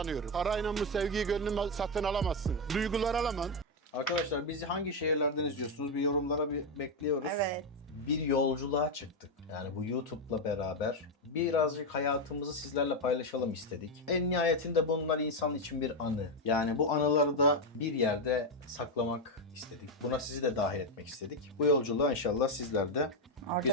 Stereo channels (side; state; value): both; normal; correlation 0.06